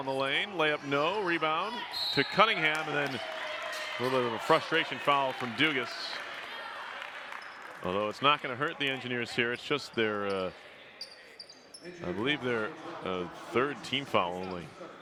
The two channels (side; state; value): both; identical; correlation 1.00